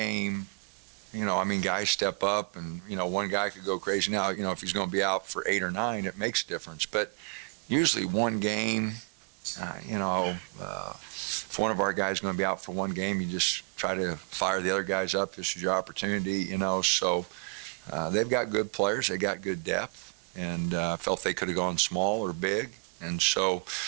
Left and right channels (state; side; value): quieter; left; 37.8 dB